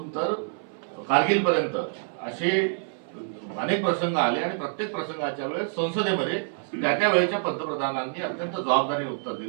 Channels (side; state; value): left; silent; 60 dB below the other